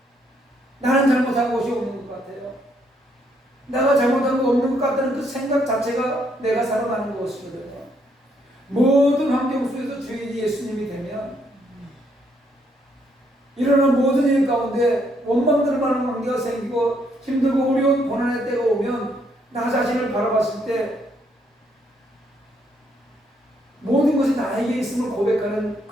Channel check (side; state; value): both; normal; correlation 0.72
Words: 나는 잘못한 것이 없는 것 같아요. 내가 잘못한 거 없는 것 같다는 그 생각 자체가 내가 살아가는 것이거든요. 모든 환경 속에서 주인이 예수님이 되면 일어나는 모든 일 가운데 원망들 많은 관계가 생기고 힘들고 어려운 고난의 때가 오면 나 자신을 바라봤을 때 모든 것이 나에게 있음을 고백하는